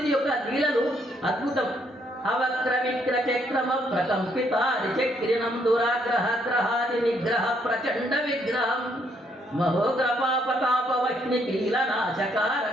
యొక్క లీలలు అద్భుతం. అవక్ర విక్ర చక్రమ ప్రకంపిత చక్రిణం దురాగ్రహ గ్రహాది నిగ్రహ ప్రచండ విగ్రహం మహోగ్రపాపతాపవహ్ని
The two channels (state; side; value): normal; both; correlation 0.71